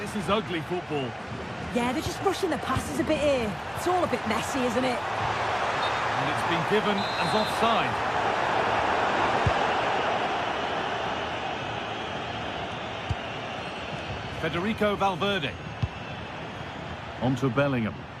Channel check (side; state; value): both; identical; correlation 1.00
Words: is ugly football. Yeah, they're just rushing the passes a bit here. It's all a bit messy, isn't it? And it's been given as offside. Federico Valverde. On to Bellingham.